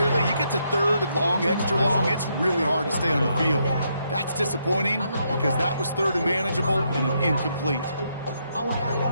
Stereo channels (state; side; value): inverted; both; correlation -0.77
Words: you get to 3rd and long, extra long, it's really hard to stay on the field. That's disappointing because that was 3rd and manageable and an incomplete.